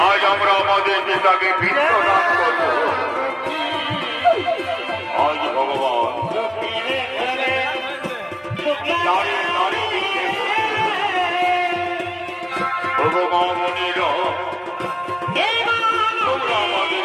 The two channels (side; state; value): both; identical; correlation 1.00